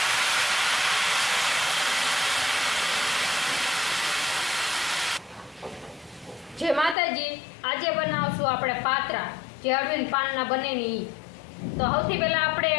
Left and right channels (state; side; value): drops out; right; at 7.0 s